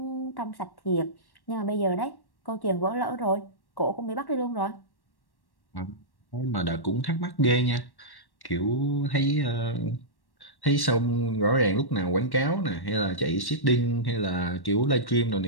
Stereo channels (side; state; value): right; late; 1.1 ms